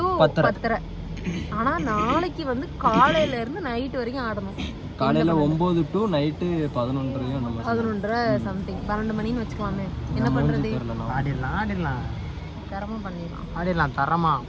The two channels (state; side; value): identical; both; correlation 1.00